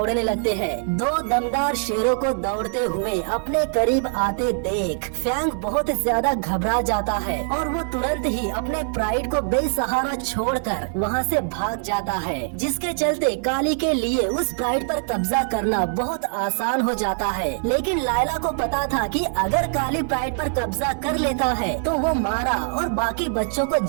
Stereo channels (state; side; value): silent; left; digital silence